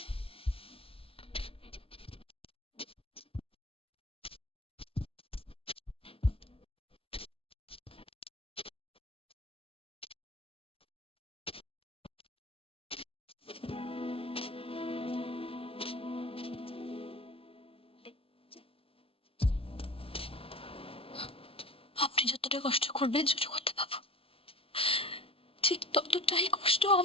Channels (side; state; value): right; late; 0.27 ms